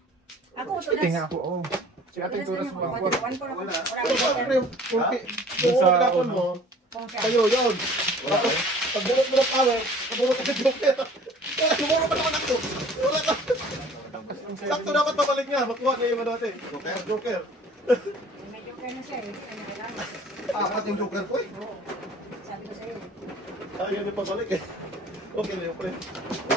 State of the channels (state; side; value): normal; both; correlation 0.50